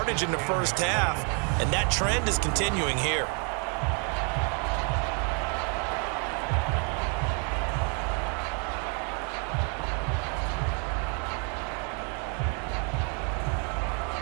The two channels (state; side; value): quieter; left; 38.8 dB